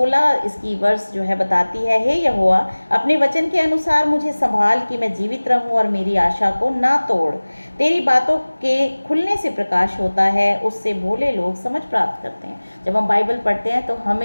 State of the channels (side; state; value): both; inverted; correlation -1.00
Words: इसकी वर्स जो है बताती है, हे यहोवा, अपने वचन के अनुसार मुझे संभाल कि मैं जीवित रहूं और मेरी आशा को ना तोड़। तेरी बातों के खुलने से प्रकाश होता है, उससे भोले लोग समझ प्राप्त करते हैं। जब हम बाइबल पढ़ते हैं तो